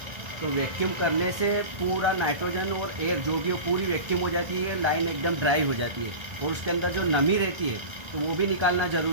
तो वैक्यूम करने से पूरा नाइट्रोजन और एयर जो भी हो पूरी वैक्यूम हो जाती है, लाइन एकदम ड्राई हो जाती है और उसके अंदर जो नमी रहती है तो वो भी निकालना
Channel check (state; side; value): late; left; 1.3 ms